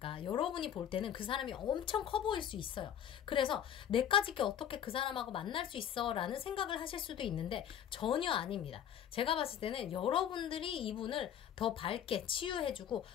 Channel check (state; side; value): quieter; right; 9.6 dB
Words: 여러분이 볼 때는 그 사람이 엄청 커 보일 수 있어요. 그래서 내까지 게 어떻게 그 사람하고 만날 수 있어 라는 생각을 하실 수도 있는데 전혀 아닙니다. 제가 봤을 때는 여러분들이 이분을 더 밝게 치유해주고